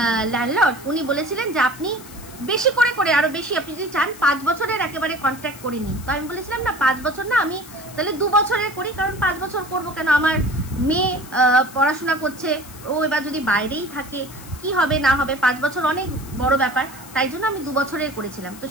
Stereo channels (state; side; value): noise; left; hiss, 18 dB below the sound